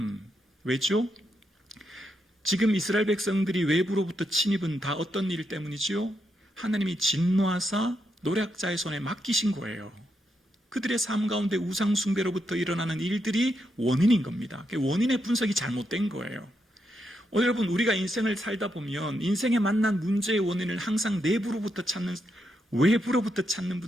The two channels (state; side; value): normal; both; correlation 0.82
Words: 왜죠? 지금 이스라엘 백성들이 외부로부터 침입은 다 어떤 일 때문이지요? 하나님이 진노하사 노략자의 손에 맡기신 거예요. 그들의 삶 가운데 우상숭배로부터 일어나는 일들이 원인인 겁니다. 원인의 분석이 잘못된 거예요. 여러분, 우리가 인생을 살다 보면 인생에 만난 문제의 원인을 항상 내부로부터 찾는, 외부로부터 찾는